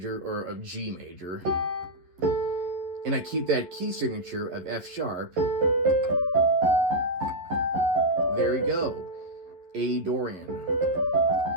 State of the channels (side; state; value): left; late; 11 ms